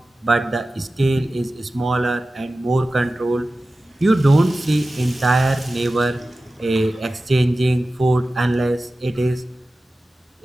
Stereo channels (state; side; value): normal; both; correlation 0.95